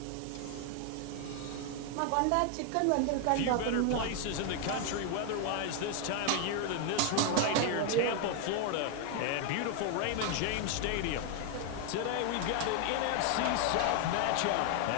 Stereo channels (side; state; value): both; different; correlation 0.00